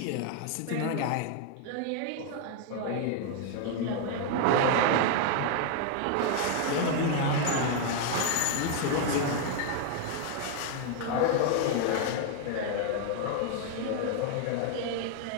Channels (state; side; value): different; both; correlation 0.00